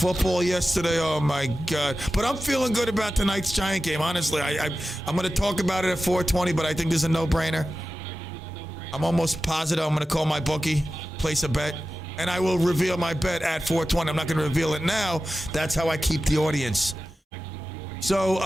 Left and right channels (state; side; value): normal; both; correlation 0.94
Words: yesterday, oh my God. But I'm feeling good about tonight's Giant game, honestly. I'm going to talk about it at 4:20, but I think there's a no-brainer. I'm almost positive I'm going to call my bookie, place a bet, and I will reveal my bet at 4:20. I'm not going to reveal it now. That's how I keep the audience. So,